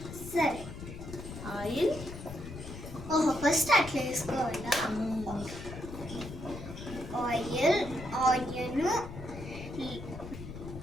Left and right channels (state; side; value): noise; left; rumble, 11 dB below the sound